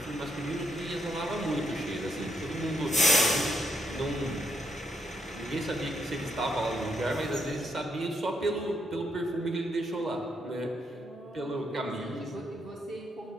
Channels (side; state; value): both; normal; correlation 0.76